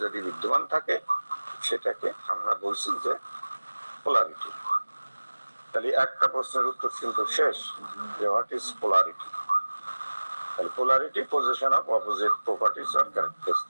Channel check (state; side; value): inverted; both; correlation -1.00